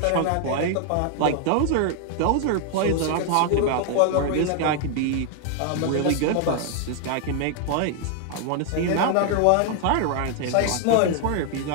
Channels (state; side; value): different; both; correlation 0.00